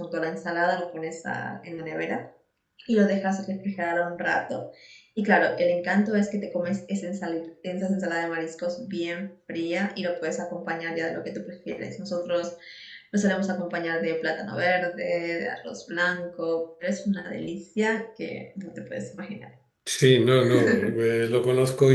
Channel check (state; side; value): identical; both; correlation 1.00